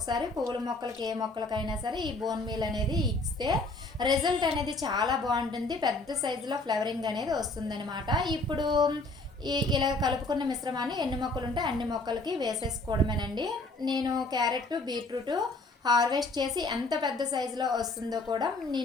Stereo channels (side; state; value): right; quieter; 3.1 dB